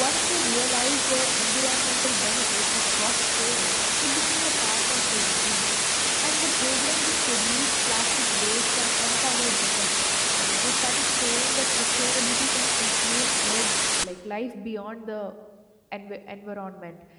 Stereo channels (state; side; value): identical; both; correlation 1.00